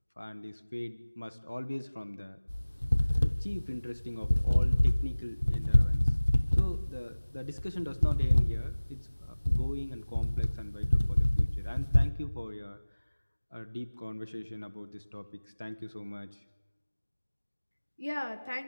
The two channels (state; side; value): inverted; both; correlation -1.00